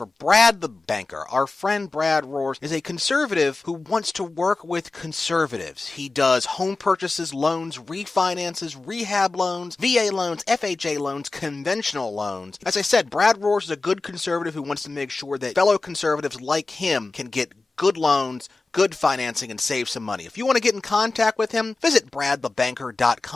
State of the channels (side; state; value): right; quieter; 3.5 dB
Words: Brad the Banker. Our friend Brad Roars is a conservative who wants to work with conservatives. He does home purchases, loans, refinances, rehab loans, VA loans, FHA loans, conventional loans. As I said, Brad Roars is a good conservative who wants to make sure that fellow conservatives like him can get good loans, good financing, and save some money. If you want to get in contact with him, visit